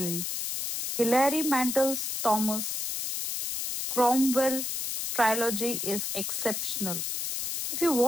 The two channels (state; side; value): noise; left; hiss, 3 dB below the sound